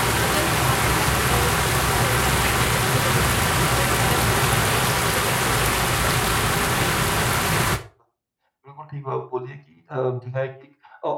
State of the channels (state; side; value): identical; both; correlation 1.00